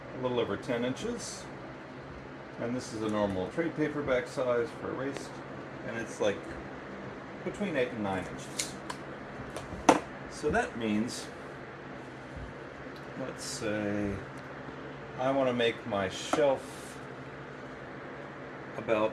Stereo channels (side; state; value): both; identical; correlation 1.00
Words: a little over 10 inches. And this is a normal trade paperback size for a waist. And it's like between 8 and 9 inches. So that means, let's say I want to make my shelf